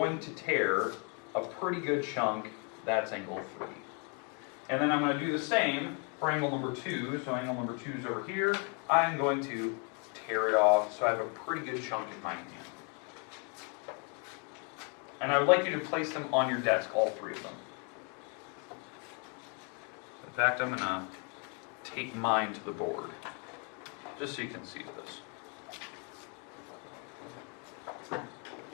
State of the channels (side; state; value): right; quieter; 37.0 dB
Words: to tear a pretty good chunk. That's angle 3. And then I'm going to do the same for angle number 2. So angle number 2 is over here. I'm going to tear it off so I have a pretty good chunk in my hand. And I would like you to place them on your desk, all 3 of them. In fact, I'm going to take mine to the board, just so you can see this.